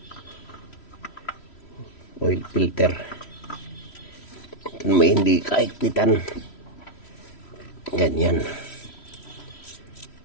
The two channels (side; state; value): right; late; 3.1 ms